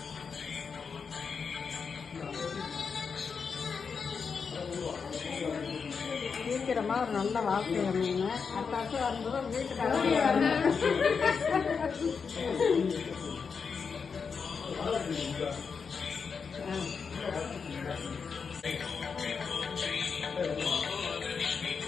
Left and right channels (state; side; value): quieter; right; 5.7 dB